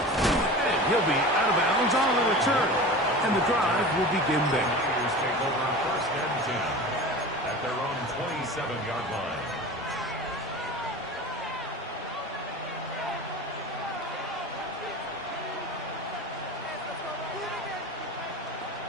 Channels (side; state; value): both; normal; correlation 0.34